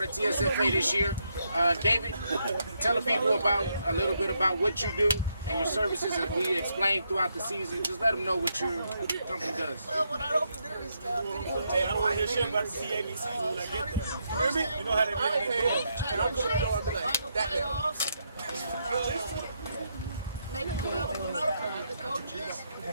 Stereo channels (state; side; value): inverted; both; correlation -0.79